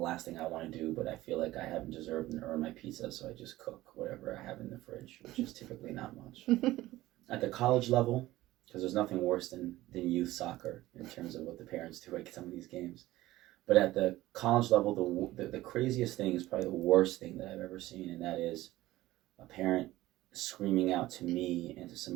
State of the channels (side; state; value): left; quieter; 16.7 dB